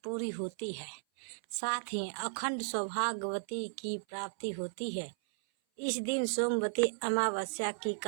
पूरी होती है, साथ ही अखंड सौभाग्यवती की प्राप्ति होती है। इस दिन सोमवती अमावस्या की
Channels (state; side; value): silent; left; 54 dB below the other